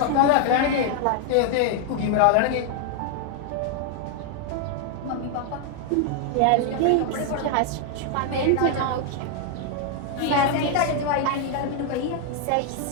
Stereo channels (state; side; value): different; both; correlation 0.00